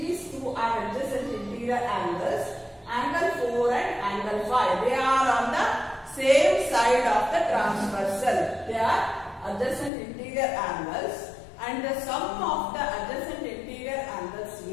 two are adjacent interior angles. Angle 4 and angle 5. They are on the same side of the transversal. They are adjacent interior angles and the sum of the adjacent interior angles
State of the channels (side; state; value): right; drops out; at 9.9 s